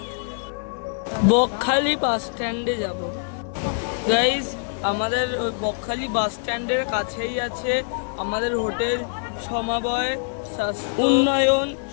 বকখালি বাস স্ট্যান্ডে যাব। গাইস আমাদের ওই বকখালি বাস স্ট্যান্ডের কাছেই আছে আমাদের হোটেল সমবায় উন্নয়ন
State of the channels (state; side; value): silent; right; digital silence